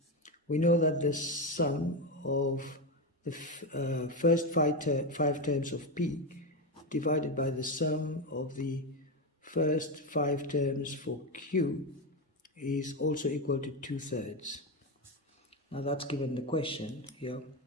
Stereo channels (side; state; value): both; normal; correlation 0.12